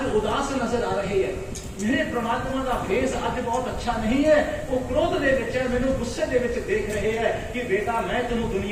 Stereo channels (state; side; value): identical; both; correlation 1.00